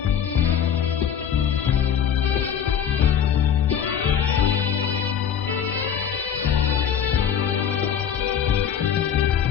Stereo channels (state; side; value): quieter; right; 8.4 dB